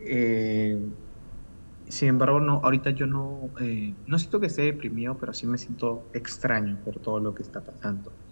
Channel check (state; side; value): inverted; both; correlation -1.00